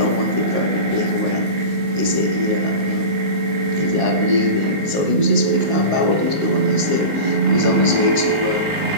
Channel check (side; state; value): left; late; 19 ms